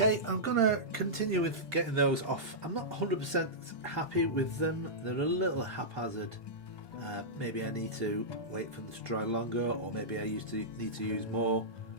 Okay, I'm going to continue with getting those off. I'm not 100% happy with them. They're a little haphazard. Maybe I need to wait for them to dry longer, or maybe I need to use more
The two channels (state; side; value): late; right; 1.2 ms